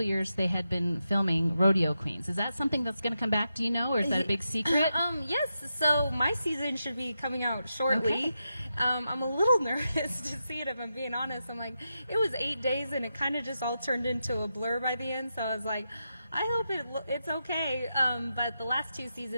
of years they had been filming Rodeo Queens. Is that something that's going to come back? Do you know, or is that a big secret? Yes. So my season should be coming out shortly. Okay. I'm a little nervous to see it, if I'm being honest. I'm like, it was 8 days, and it kind of just all turned into a blur by the end. So I was like, I hope it's okay. But the last 2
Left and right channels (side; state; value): both; inverted; correlation -0.87